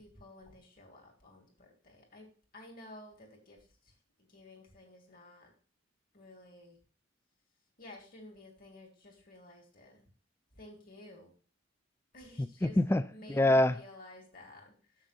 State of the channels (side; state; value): both; normal; correlation 0.80